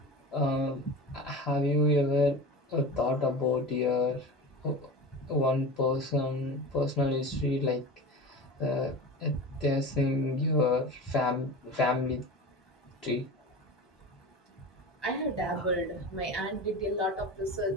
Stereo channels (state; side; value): normal; both; correlation 0.31